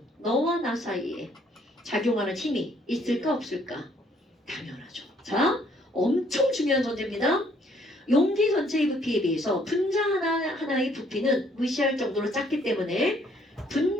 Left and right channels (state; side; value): normal; both; correlation 0.65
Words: 너와 나 사이에 작용하는 힘이 있을까 없을까? 당연하죠. 자, 엄청 중요한 전제입니다. 용기 전체의 부피에 비해서 분자 하나하나의 부피는 무시할 정도로 작기 때문에